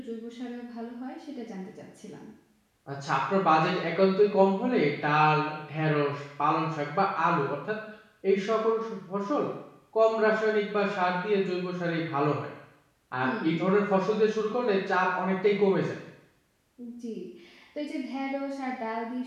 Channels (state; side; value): identical; both; correlation 1.00